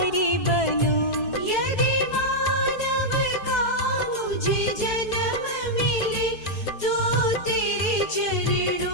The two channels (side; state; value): right; late; 4.6 ms